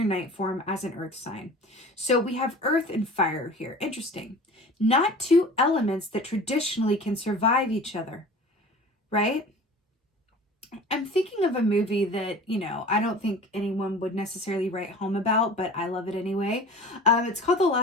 Knight form as an earth sign. So we have earth and fire here. Interesting. Not two elements that traditionally can survive each other, right? I'm thinking of a movie that, you know, I don't think anyone would necessarily write home about, but I love it anyway. It's called The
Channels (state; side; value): normal; both; correlation 0.41